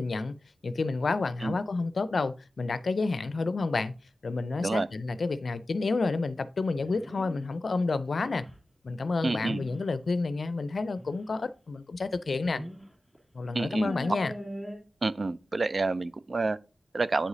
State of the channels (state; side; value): normal; both; correlation 0.94